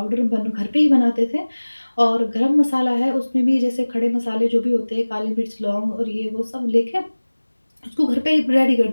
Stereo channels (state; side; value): inverted; both; correlation -1.00